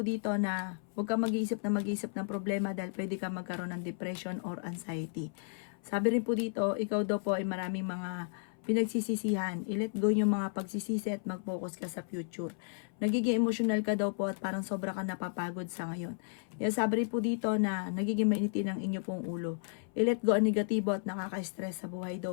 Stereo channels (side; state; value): right; silent; 55 dB below the other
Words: dito na huwag kang mag-iisip ng problema dahil pwede kang magkaroon ng depression or anxiety. Sabi rin po dito, ikaw daw po ay maraming mga pinagsisisihan. I-let go yung mga pagsisisi at mag-focus ka sa future. Nagiging emotional ka daw po at parang sobra ka napapagod sa ngayon. Sabi rin po dito na nagiging mainitin ang inyo pong ulo. I-let go ang negatibo at nakaka-stress sa buhay